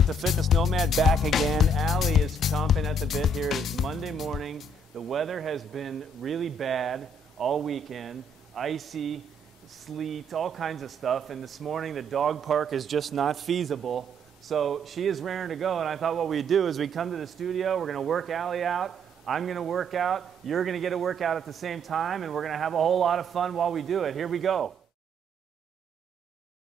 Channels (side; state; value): both; normal; correlation 0.68